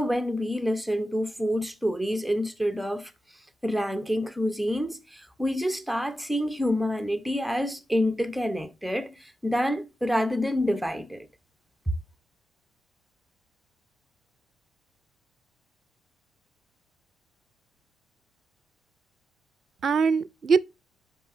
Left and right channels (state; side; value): normal; both; correlation 0.90